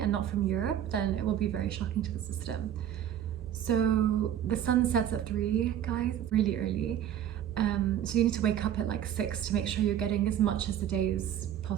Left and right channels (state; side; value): quieter; left; 10.4 dB